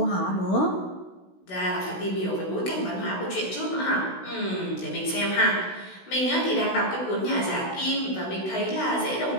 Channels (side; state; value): right; late; 16 ms